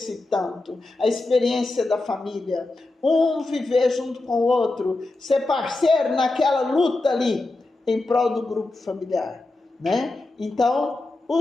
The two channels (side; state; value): right; quieter; 3.0 dB